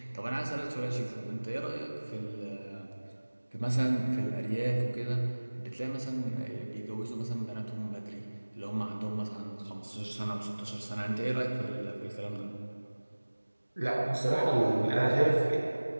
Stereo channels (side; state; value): both; inverted; correlation -1.00